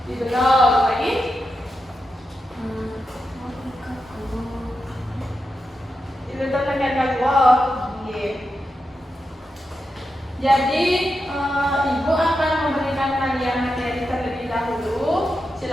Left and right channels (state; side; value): normal; both; correlation 0.88